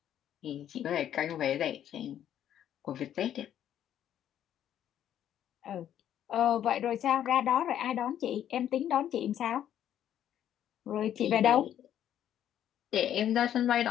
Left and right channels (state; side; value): quieter; right; 10.6 dB